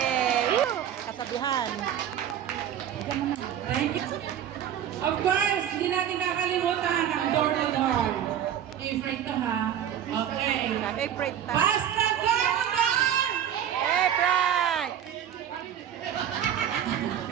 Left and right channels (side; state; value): left; quieter; 9.9 dB